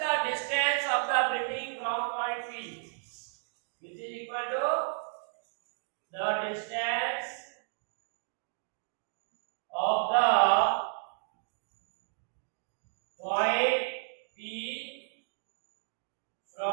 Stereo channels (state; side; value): silent; left; digital silence